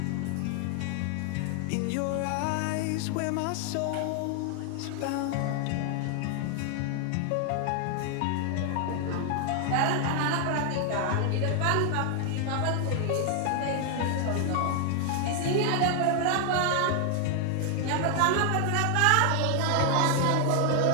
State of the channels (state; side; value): different; both; correlation 0.00